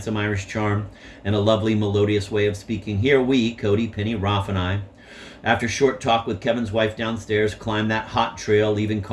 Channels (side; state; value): both; identical; correlation 1.00